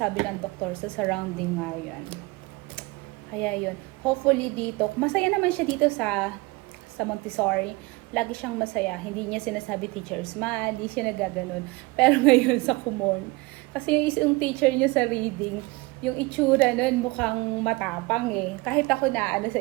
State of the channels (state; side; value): quieter; left; 23.8 dB